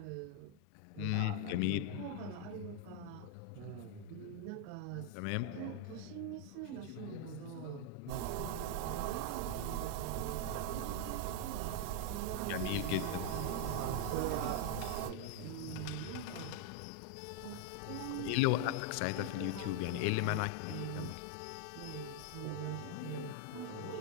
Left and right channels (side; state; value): both; different; correlation 0.00